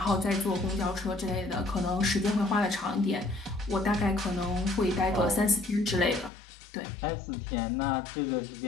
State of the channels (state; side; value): drops out; right; at 6.3 s